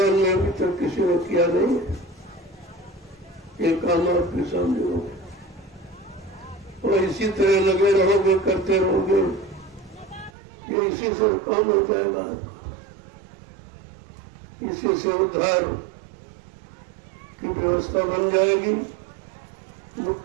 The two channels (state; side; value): drops out; left; at 10.3 s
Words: में अभी तक किसी ने किया नहीं। ये काम आपके सामने हो गया और इसी तरह लगे रहोगे, करते रहोगे, ये इसी से काम हो जाएगा। इसी से उद्धार की व्यवस्था बन जाएगी,